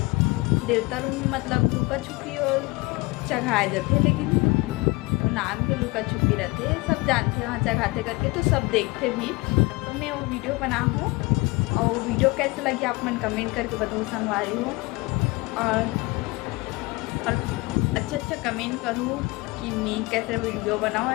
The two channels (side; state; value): right; quieter; 24.3 dB